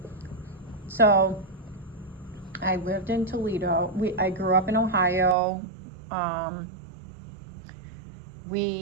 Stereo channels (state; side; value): drops out; left; at 5.4 s